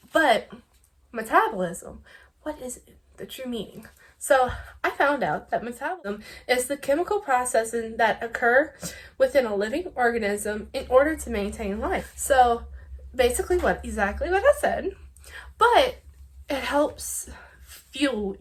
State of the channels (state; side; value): identical; both; correlation 1.00